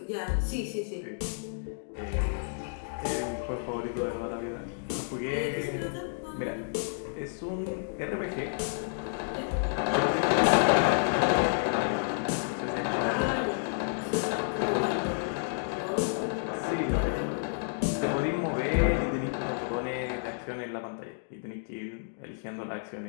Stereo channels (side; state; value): right; silent; digital silence